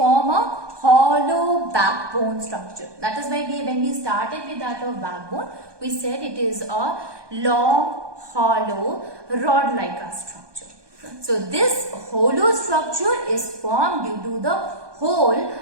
a hollow backbone structure. That is why when we started with that of backbone, we said it is a long, hollow, rod-like structure. So this hollow structure is formed due to the hole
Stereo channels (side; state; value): left; late; 1.2 ms